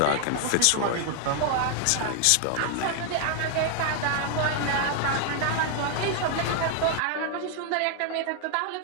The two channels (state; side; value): different; both; correlation 0.00